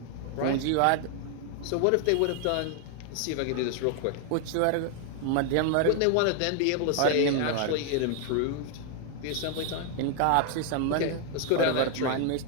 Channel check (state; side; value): different; both; correlation 0.00